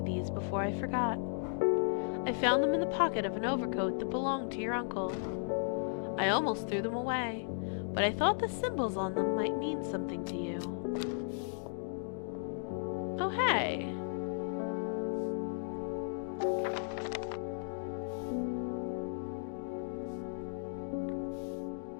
these before I forgot. I found them in the pocket of an overcoat that belonged to your uncle. I almost threw them away, but I thought the symbols on them might mean something to you. Oh, hey!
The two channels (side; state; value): right; silent; digital silence